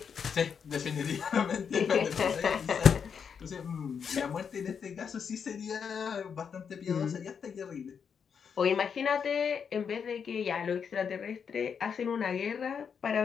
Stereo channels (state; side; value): quieter; right; 6.8 dB